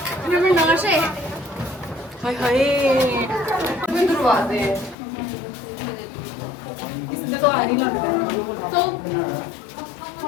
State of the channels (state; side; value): drops out; right; at 5.0 s